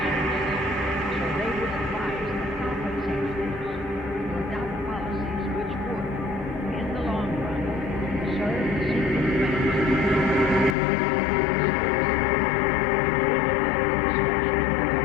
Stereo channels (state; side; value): drops out; right; at 10.8 s